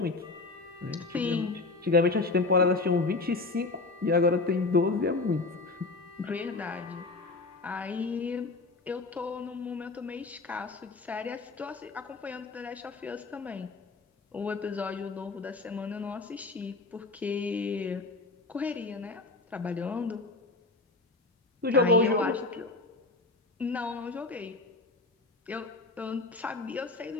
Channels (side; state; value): right; quieter; 3.5 dB